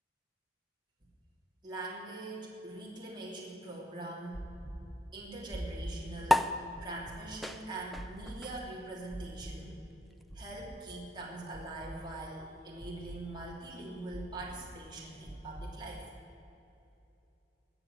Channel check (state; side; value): normal; both; correlation 0.72